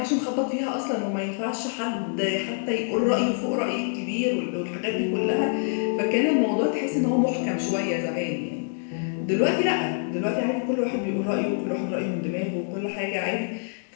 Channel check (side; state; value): right; silent; digital silence